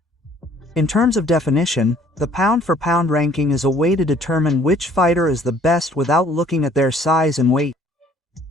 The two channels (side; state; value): both; normal; correlation 0.58